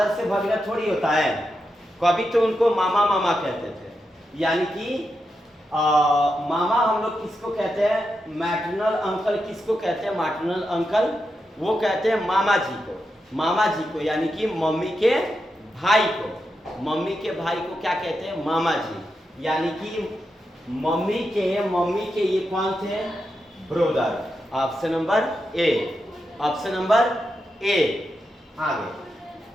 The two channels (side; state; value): both; normal; correlation 0.87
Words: से भगिना थोड़ी होता है, कभी तो उनको मामा कहते थे। यानी कि मामा हम लोग किसको कहते हैं? मैटरनल अंकल किसको कहते हैं? मैटरनल अंकल, वो कहते हैं मामा जी को, यानी कि मम्मी के भाई को। मम्मी के भाई को क्या कहते हैं? मामा जी। यानी कि मम्मी के ये कौन थे? Brother. Option number A, option number A. आगे